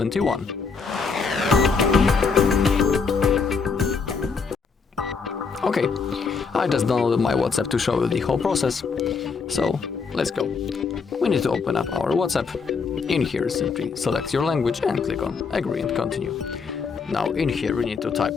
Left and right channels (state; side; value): quieter; right; 5.1 dB